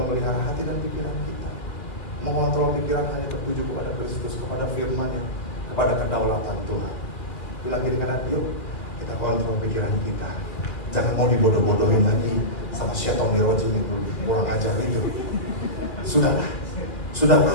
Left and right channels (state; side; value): late; right; 2.1 ms